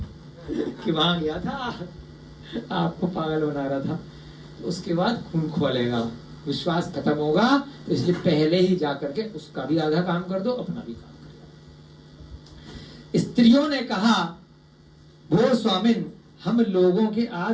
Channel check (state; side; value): identical; both; correlation 1.00